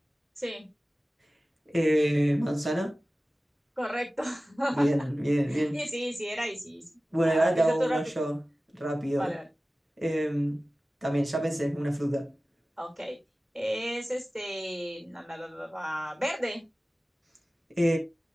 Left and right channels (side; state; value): both; normal; correlation 0.97